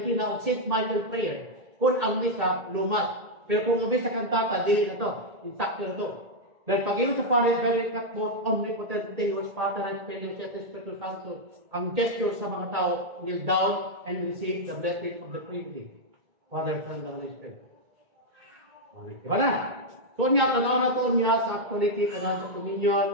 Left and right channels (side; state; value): left; late; 1.8 ms